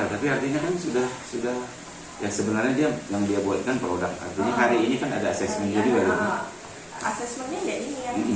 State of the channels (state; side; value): identical; both; correlation 1.00